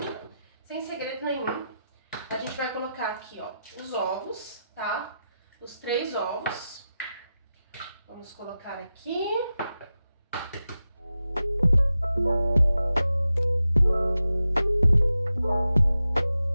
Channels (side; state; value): both; inverted; correlation -0.91